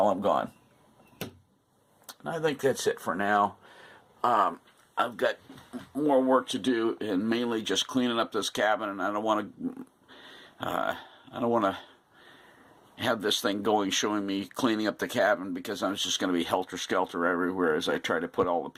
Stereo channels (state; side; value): identical; both; correlation 1.00